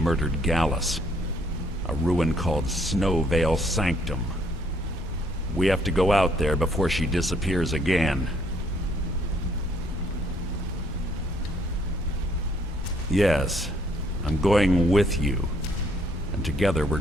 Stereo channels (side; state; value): both; normal; correlation 0.66